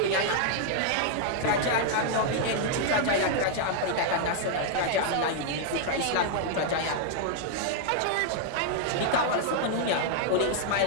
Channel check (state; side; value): different; both; correlation 0.00